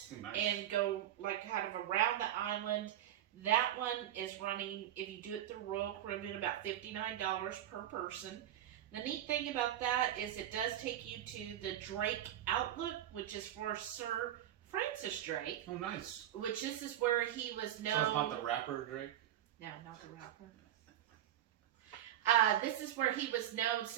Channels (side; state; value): left; quieter; 11.8 dB